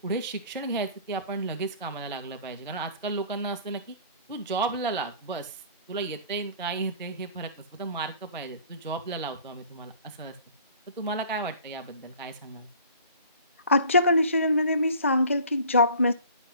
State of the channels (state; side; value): inverted; both; correlation -0.48